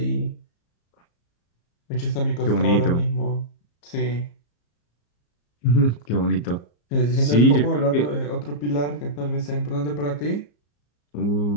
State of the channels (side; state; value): right; late; 34 ms